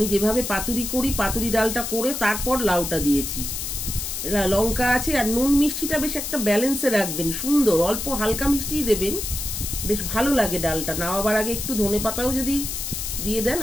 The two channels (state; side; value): noise; left; hiss, 4 dB below the sound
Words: যেভাবে পাতুরি করি, পাতুরি ডালটা করে তারপর লাউটা দিয়েছি। লঙ্কা আছে, আর নুন মিষ্টিটা বেশ একটা ব্যালেন্সে রাখবেন, সুন্দর অল্প হালকা মিষ্টিই দেবেন, বেশ ভালো লাগে। ডালটা নামাবার আগে একটু ধনে পাতাও যদি দিয়ে দেন,